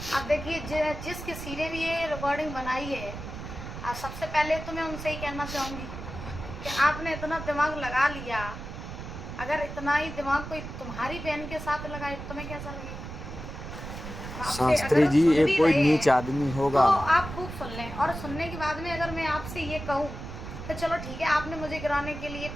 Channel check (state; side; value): noise; right; rumble, 9 dB below the sound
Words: अब देखिए, जिस किसी ने भी ये रिकॉर्डिंग बनाई है, सबसे पहले तो मैं उनसे ही कहना चाहूँगी कि आपने इतना दिमाग लगा लिया। अगर इतना ही दिमाग कोई तुम्हारी बहन के साथ लगाए तो तुम्हें कैसा लगेगा? आपसे शास्त्री अगर जी सुन ये भी कोई रहे नीच हैं आदमी तो होगा। आप खूब सुन लें, और सुनने के बाद में अगर मैं आपसे ये कहूँ तो चलो ठीक है, आपने मुझे गिराने के लिए,